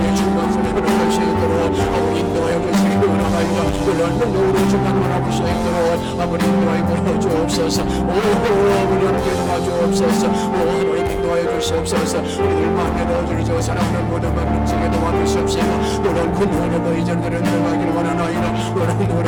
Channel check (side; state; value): both; identical; correlation 1.00